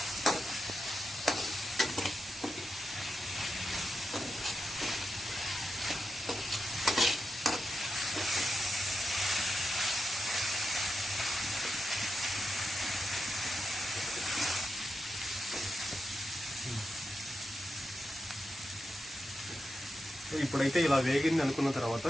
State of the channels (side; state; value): both; normal; correlation 0.87